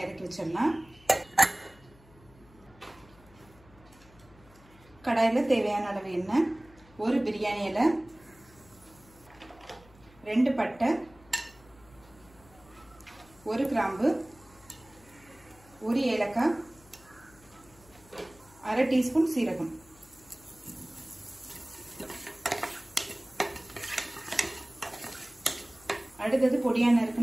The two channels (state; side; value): noise; left; hum, 26 dB below the sound